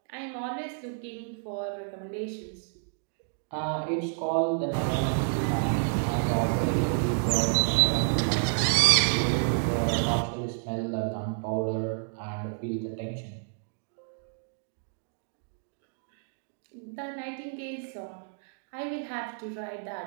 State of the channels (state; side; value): silent; left; digital silence